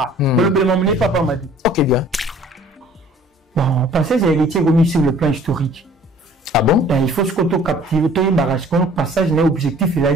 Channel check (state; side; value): normal; both; correlation 0.53